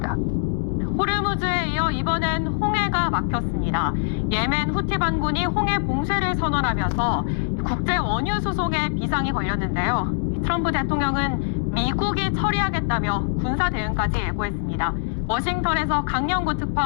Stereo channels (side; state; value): right; silent; digital silence